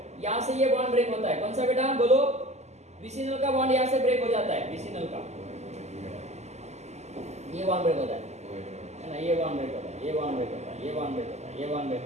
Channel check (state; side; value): late; left; 0.33 ms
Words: यहाँ से ये बॉन्ड ब्रेक होता है, कौन सा बेटा बोलो? विसिनल का बॉन्ड यहाँ से ब्रेक हो जाता है, विसिनल का ये बॉन्ड ब्रेक होता है ना, ये बॉन्ड ब्रेक होता है, ये बॉन्ड ब्रेक होता है, ये बॉन्ड ब्रेक होता है, ये बॉन्ड ब्रेक